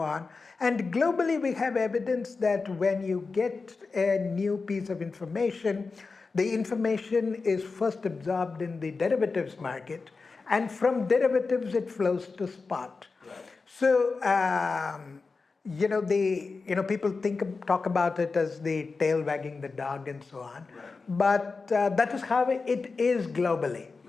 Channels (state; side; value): quieter; right; 4.3 dB